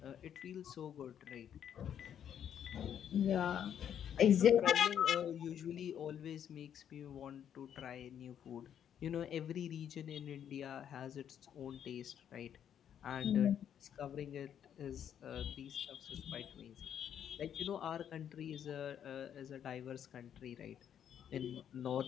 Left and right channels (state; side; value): quieter; right; 9.2 dB